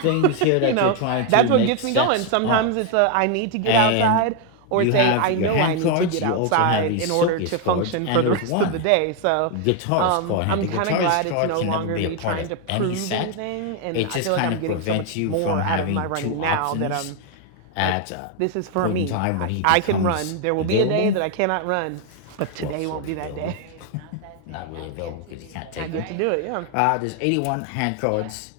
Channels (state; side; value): different; both; correlation 0.01